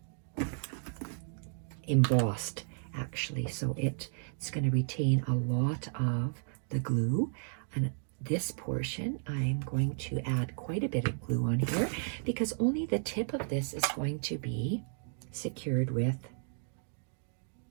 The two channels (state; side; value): silent; left; digital silence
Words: embossed, actually, so it's going to retain a lot of the glue. And this portion, I'm going to add quite a bit of glue on here because only the tip of this is going to be secured with,